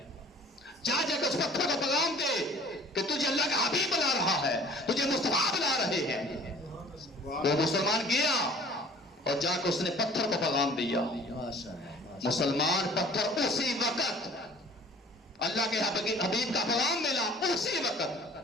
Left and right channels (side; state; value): both; normal; correlation 0.49